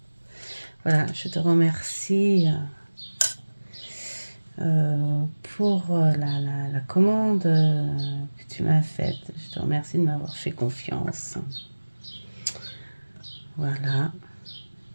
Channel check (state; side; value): inverted; both; correlation -1.00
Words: Voilà, je te remercie pour la commande que tu m'as faite. Je te remercie de m'avoir fait confiance. Voilà.